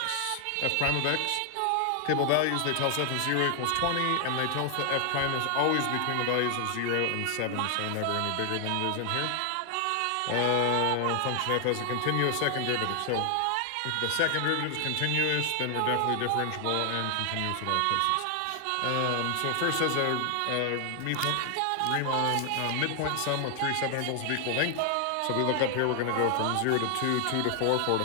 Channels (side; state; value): both; different; correlation 0.00